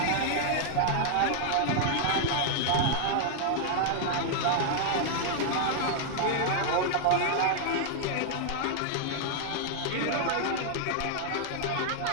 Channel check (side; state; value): both; different; correlation 0.00